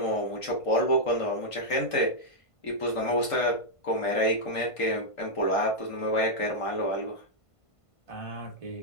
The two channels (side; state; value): right; late; 1.5 ms